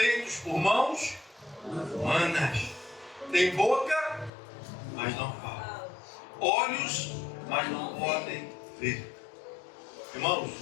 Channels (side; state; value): right; drops out; at 4.3 s